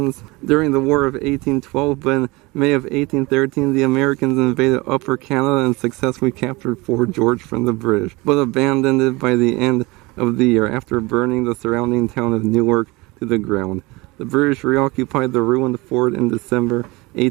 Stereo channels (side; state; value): left; quieter; 23.6 dB